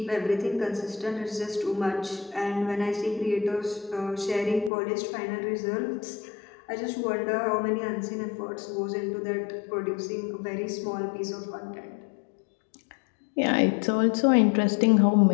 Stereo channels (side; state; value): right; drops out; at 4.7 s